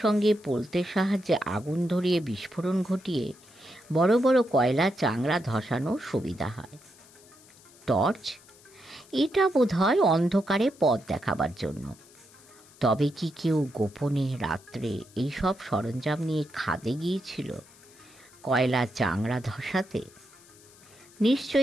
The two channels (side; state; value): left; noise; hiss, 25 dB below the sound